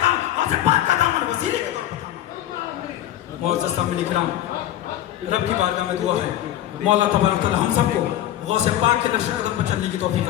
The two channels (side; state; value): right; quieter; 12.6 dB